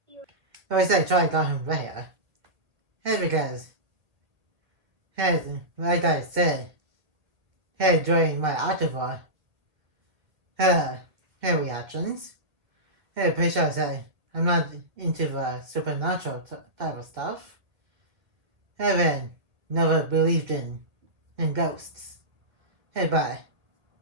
I would say Charlie got him there. Because, like I said, during my October reactions, pretty sure I said I'm not into the supernatural type of stuff. Haven't never believed in ghosts. But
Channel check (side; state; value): left; late; 2.0 ms